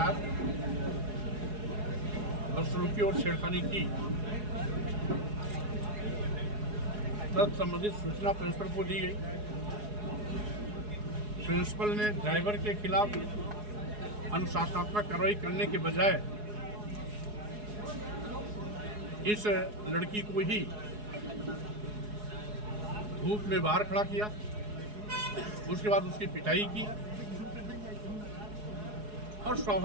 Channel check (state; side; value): late; left; 4.8 ms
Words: बदसलूकी और छेड़खानी की, तब संबंधित सूचना प्रिंसिपल को दी गई। प्रिंसिपल ने ड्राइवर के खिलाफ अनुशासनात्मक कार्रवाई करने के बजाय इस लड़की को ही धूप में बाहर खड़ा किया। उसके बाद उसकी पिटाई की और